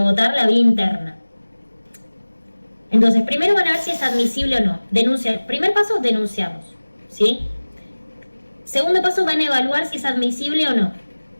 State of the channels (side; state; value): both; inverted; correlation -1.00